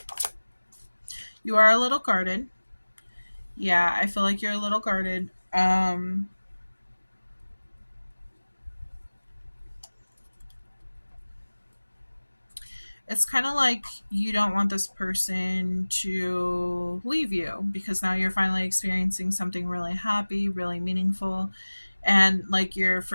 You are a little guarded. Yeah, I feel like you're a little guarded. It's kind of like you don't want this person to leave you because now you're finally experiencing something really happy, really meaningful, and like you're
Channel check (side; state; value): both; inverted; correlation -1.00